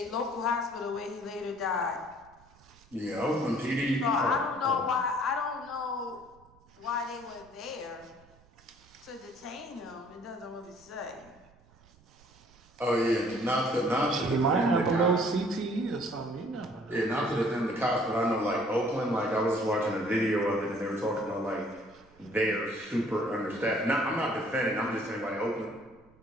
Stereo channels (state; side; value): noise; right; rumble, 28 dB below the sound